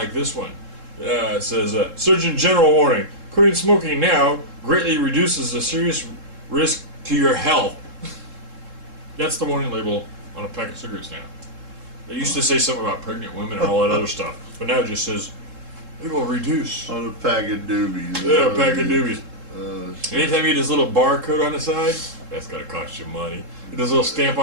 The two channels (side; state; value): left; late; 3.7 ms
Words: this one. It says, Surgeon General warning, quitting smoking now greatly reduces a serious risk to your health. That's the warning label on a pack of cigarettes now. It used to say something about pregnant women and all that other stuff, but now it just says, it will reduce. On a pack of doobies. Yeah, a pack of doobies. Anytime you get this little barcode on the side, that's going to cost you money. This little stamp